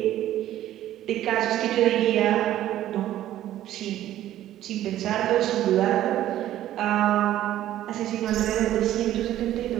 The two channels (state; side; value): quieter; left; 13.0 dB